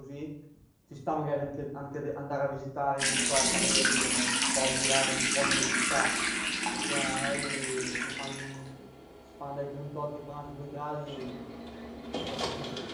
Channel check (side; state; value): both; identical; correlation 1.00